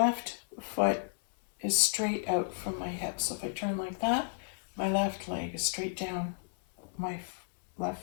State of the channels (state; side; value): silent; right; 56 dB below the other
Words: foot is straight out from my hip. So if I turn like that, my left leg is straight down. My